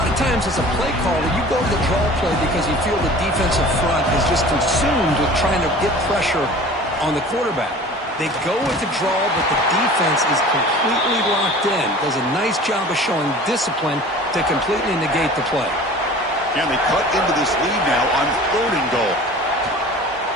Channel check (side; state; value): both; normal; correlation 0.42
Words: of times as a play caller, you go to the draw play because you feel the defensive front is just consumed with trying to get pressure on the quarterback. They go with the draw, but the defense is completely locked in. Does a nice job of showing discipline to completely negate the play. And they cut into this lead now on 3rd and goal.